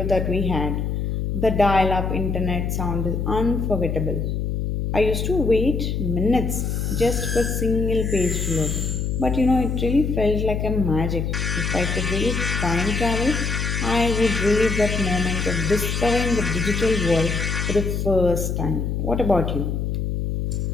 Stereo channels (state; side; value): noise; left; hum, 1 dB below the sound